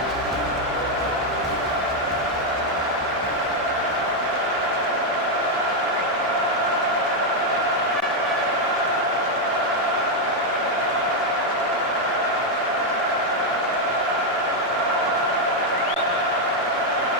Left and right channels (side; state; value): both; normal; correlation 0.01